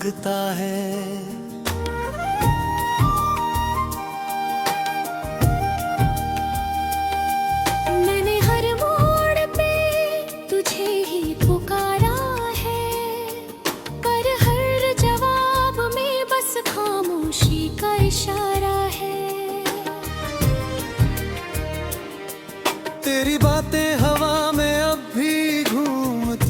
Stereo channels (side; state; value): both; identical; correlation 1.00